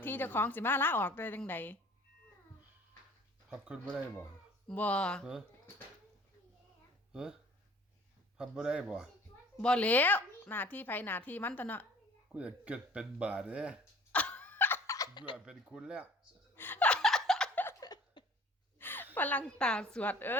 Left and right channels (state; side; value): normal; both; correlation 0.50